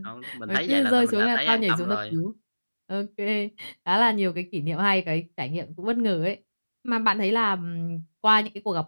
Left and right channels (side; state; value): both; inverted; correlation -1.00